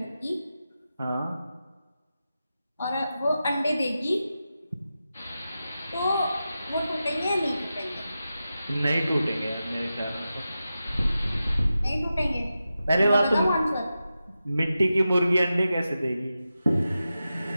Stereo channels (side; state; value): both; inverted; correlation -0.92